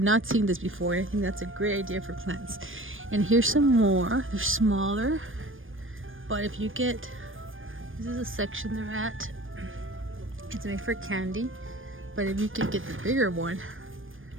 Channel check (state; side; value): late; left; 0.59 ms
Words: not seen this before. I think that's a great idea for plants. And here's some more. They're smaller, but if you get, this is a section they're at. It's made for candy, but if you could get the bigger one